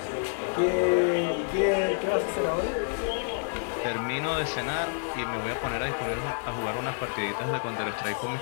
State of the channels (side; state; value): right; silent; digital silence